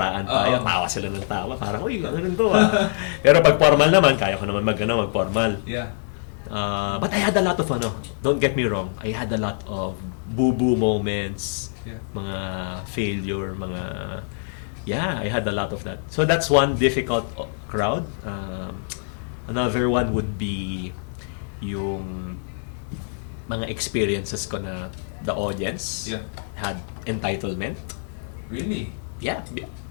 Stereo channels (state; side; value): silent; right; digital silence